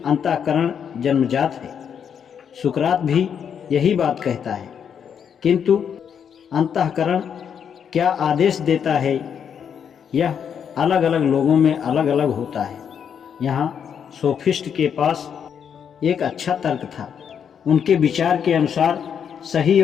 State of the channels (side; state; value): right; quieter; 7.8 dB